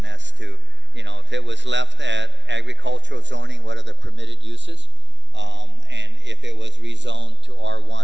as to, if it was left at agricultural zoning, what are the permitted uses? And if it was rezoned to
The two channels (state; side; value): late; left; 0.52 ms